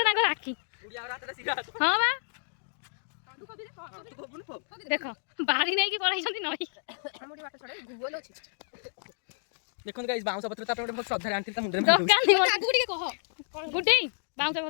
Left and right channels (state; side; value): silent; right; digital silence